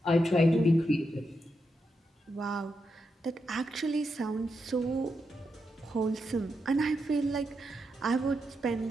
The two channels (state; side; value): normal; both; correlation 0.85